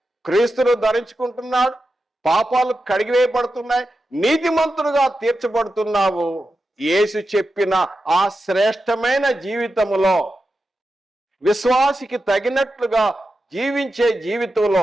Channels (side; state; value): both; normal; correlation 0.90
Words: క్రీస్తును ధరించుకుంటున్నాడు, పాపాలు కడిగివేయబడుతున్నాయి, నీతిమంతుడుగా తీర్చబడుతున్నావు. యేసు చెప్పిన ఆ శ్రేష్టమైన జీవితములో విశ్వాసికి తగినట్లుగా జీవించే జీవితంలో